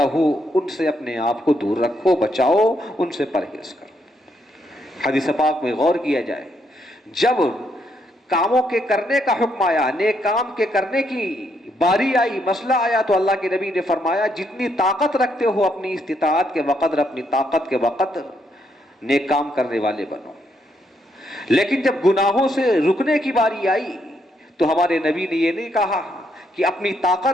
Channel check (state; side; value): normal; both; correlation 0.75